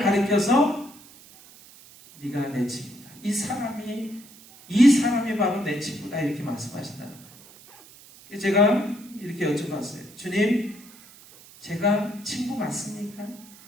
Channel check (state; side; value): noise; right; hiss, 22 dB below the sound